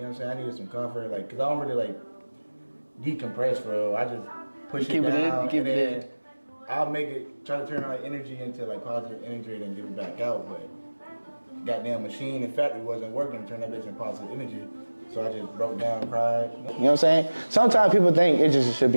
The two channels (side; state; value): both; inverted; correlation -1.00